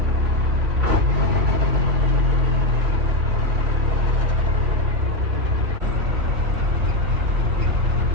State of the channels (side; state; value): left; late; 3.9 ms